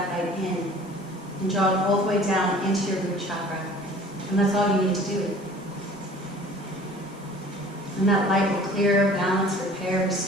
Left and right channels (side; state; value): both; normal; correlation 0.48